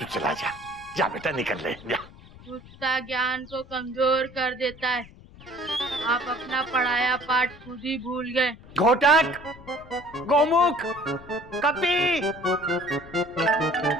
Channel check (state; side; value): noise; left; rumble, 20 dB below the sound